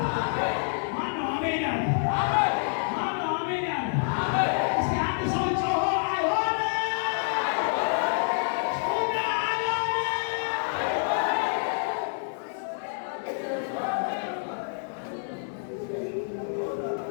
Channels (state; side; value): silent; right; 60 dB below the other